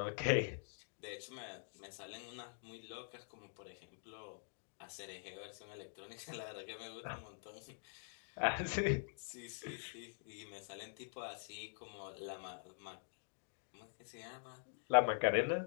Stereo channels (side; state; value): right; silent; digital silence